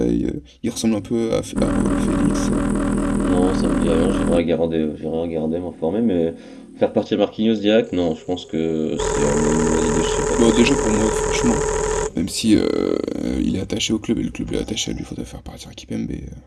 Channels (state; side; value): identical; both; correlation 1.00